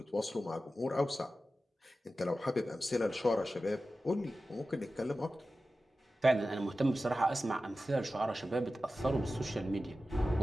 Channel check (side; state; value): both; normal; correlation 0.94